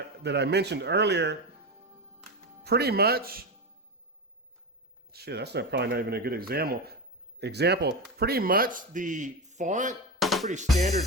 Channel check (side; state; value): both; normal; correlation 0.18